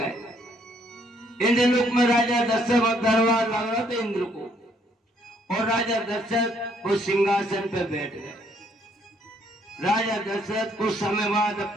इंद्रलोक में राजा दशरथ का दरबार लग रहा था इंद्र को, और राजा दशरथ वो सिंहासन पर बैठ गए। राजा दशरथ कुछ समय बाद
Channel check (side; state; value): both; normal; correlation 0.68